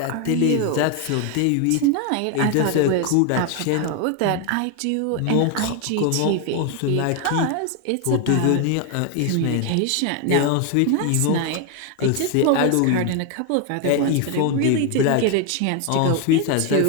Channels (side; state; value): both; different; correlation 0.01